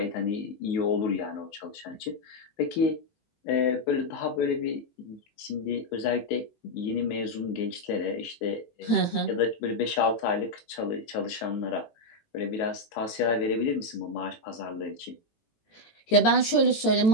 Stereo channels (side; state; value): right; late; 18 ms